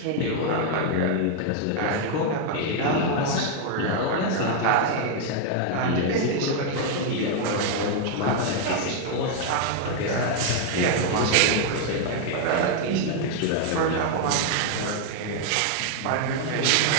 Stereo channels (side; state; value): both; different; correlation 0.00